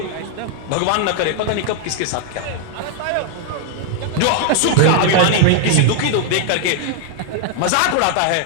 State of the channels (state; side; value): different; both; correlation 0.00